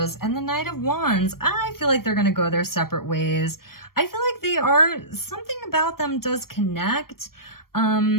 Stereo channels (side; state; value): right; late; 0.93 ms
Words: And the Knight of Wands. I feel like they're going to go their separate ways. I feel like they are, something about them does connect.